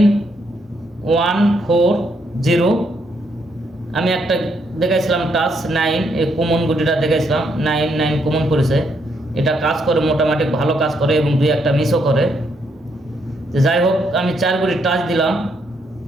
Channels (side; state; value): both; normal; correlation 0.75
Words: আমি একটা দেখাইছিলাম টাচ 9, এই কমন গুটিটা দেখাইছিলাম 99 কমন করেছে। এটা কাজ করে, মোটামুটি ভালো কাজ করে এবং 2-1টা মিসও করে। তো যাই হোক, আমি 4 গুটির টাচ দিলাম,